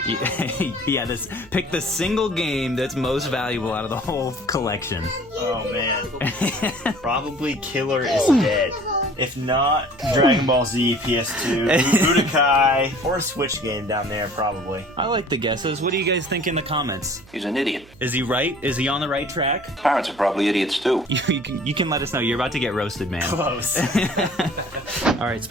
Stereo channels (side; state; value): right; noise; hum, 25 dB below the sound